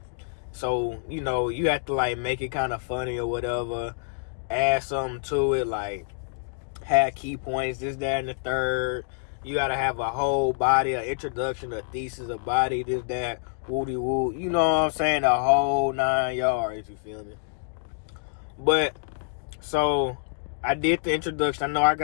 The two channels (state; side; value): silent; right; digital silence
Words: So, you know, you have to like make it kind of funny or whatever, add something to it, like have key points, this, that, and the third. You gotta have a whole body, an introduction, a thesis, a body, this, that, woody woo. You know what I'm saying? The whole 9 yards, you feel me? But, so, I did the introduction. I know I